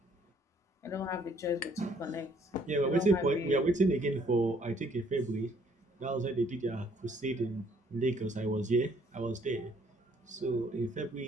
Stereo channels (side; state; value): both; normal; correlation 0.63